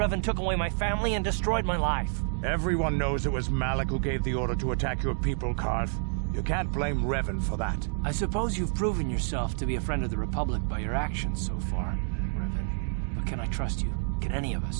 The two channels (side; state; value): left; silent; digital silence